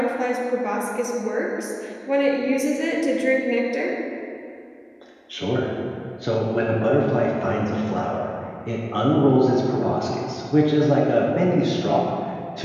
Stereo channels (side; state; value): both; identical; correlation 1.00